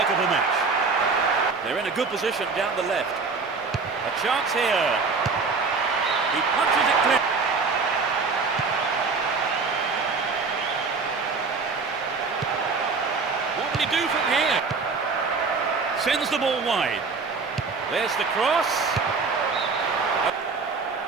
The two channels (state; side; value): quieter; left; 4.6 dB